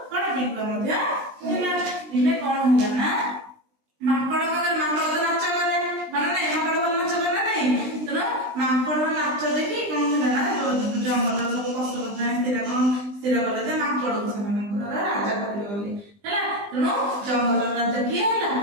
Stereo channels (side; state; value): left; late; 20 ms